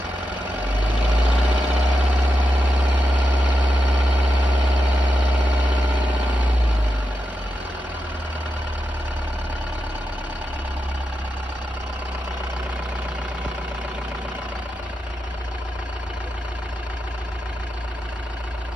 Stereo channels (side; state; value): both; normal; correlation 0.88